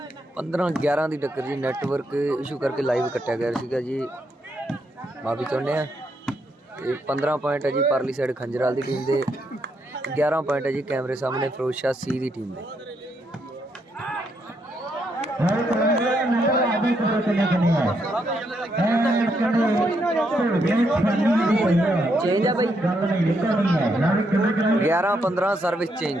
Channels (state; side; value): normal; both; correlation 0.77